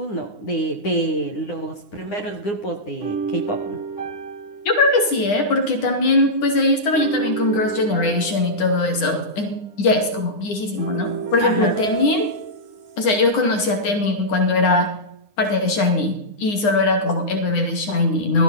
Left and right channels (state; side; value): late; right; 9.8 ms